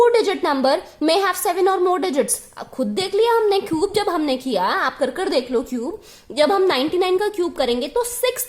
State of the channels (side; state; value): both; identical; correlation 1.00